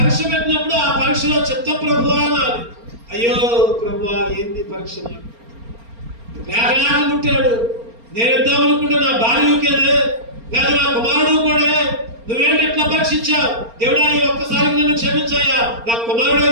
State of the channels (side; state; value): left; late; 4.3 ms